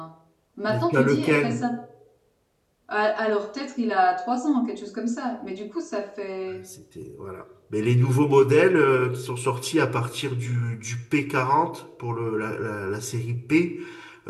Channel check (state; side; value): identical; both; correlation 1.00